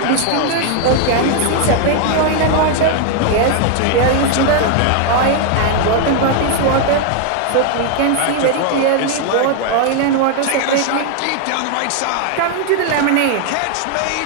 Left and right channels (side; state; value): both; different; correlation 0.00